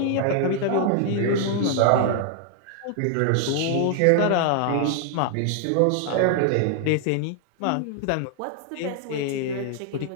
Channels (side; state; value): both; different; correlation 0.00